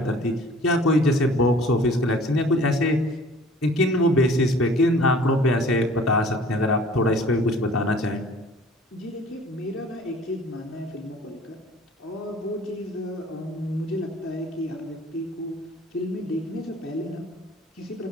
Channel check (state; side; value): normal; both; correlation 0.49